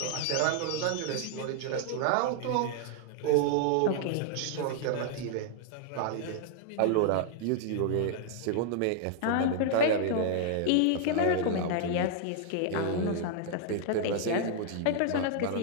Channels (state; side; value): different; both; correlation 0.00